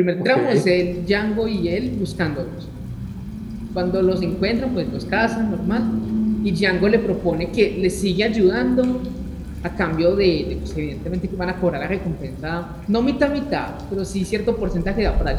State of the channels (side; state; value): both; identical; correlation 1.00